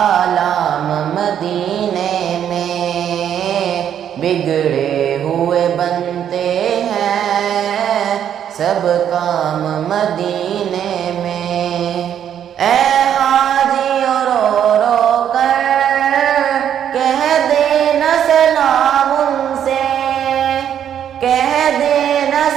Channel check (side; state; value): left; quieter; 9.5 dB